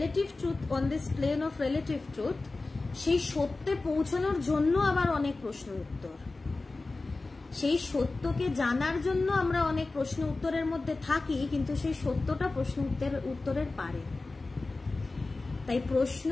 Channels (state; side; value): quieter; right; 3.4 dB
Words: truth, on this plane of relative truth, সেই সত্যে পৌঁছানোর জন্য আবার অনেক প্রশ্ন উত্তর, সেই সত্যকে জানার জন্য আমরা অনেক প্রশ্ন উত্তরের মধ্যে থাকি, কিন্তু সেই সত্যটা প্রশ্ন উত্তরের পারে। তাই প্রশ্ন